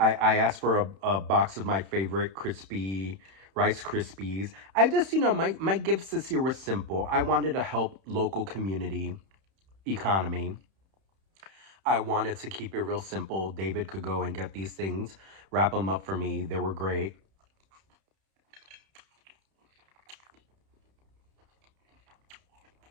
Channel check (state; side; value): late; left; 31 ms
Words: asked for a box of my favorite crispy Rice Krispies. I just, my gifts this year were simple. I wanted to help local community economy. I wanted to keep it real simple. David could go and get these things, wrap them up for me. They were great.